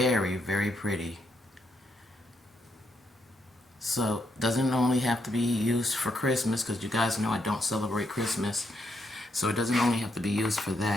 very pretty. So doesn't only have to be used for Christmas, because you guys know I don't celebrate Christmas. So it doesn't only have to be used for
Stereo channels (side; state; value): both; normal; correlation 0.78